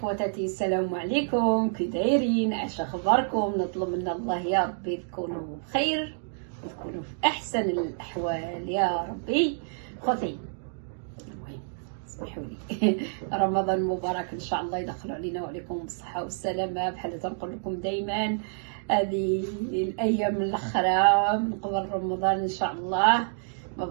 السلام عليكم، كي دايرين؟ اش اخباركم؟ نطلب من الله يا ربي تكونوا بخير وتكونوا في احسن الاحوال يا ربي. خوتي المهم اسمحوا لي رمضان مبارك ان شاء الله يدخلوا علينا وعليكم بالصحه والسلامه. بحال تنقول لكم دائما هذه الايام الاخرى من قبل رمضان ان شاء الله ما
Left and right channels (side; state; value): left; silent; digital silence